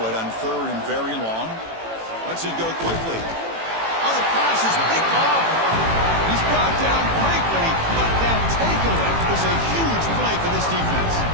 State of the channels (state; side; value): late; left; 18 ms